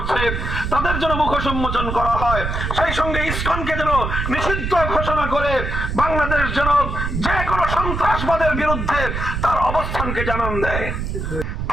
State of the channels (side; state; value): right; noise; rumble, 3 dB below the sound